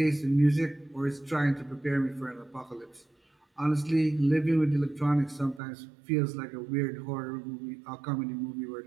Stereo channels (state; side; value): drops out; left; at 5.6 s